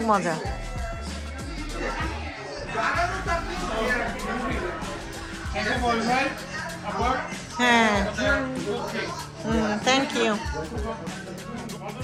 মজা এসে বলবেন আবার হ্যাঁ থ্যাংক ইউ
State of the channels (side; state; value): both; identical; correlation 1.00